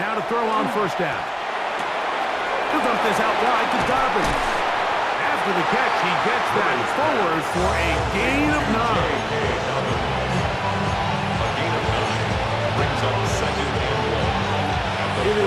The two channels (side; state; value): both; identical; correlation 1.00